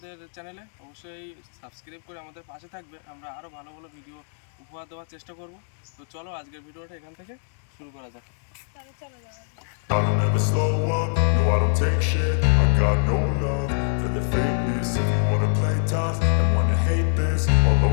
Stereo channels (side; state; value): right; silent; digital silence